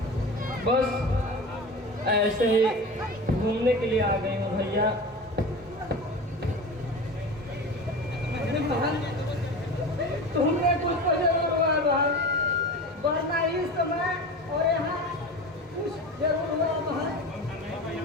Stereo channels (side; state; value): both; normal; correlation 0.31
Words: बस ऐसे ही घूमने के लिए आ गई हूँ भैया। तुमने कुछ तो जरूर हुआ भाई, वरना इस समय और यहाँ कुछ जरूर हुआ भाई।